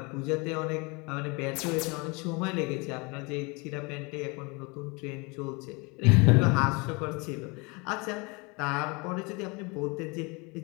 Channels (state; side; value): quieter; right; 28.7 dB